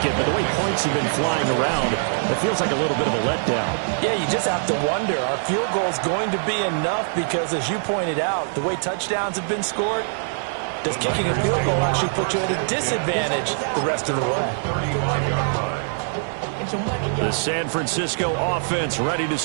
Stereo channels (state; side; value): silent; left; 60 dB below the other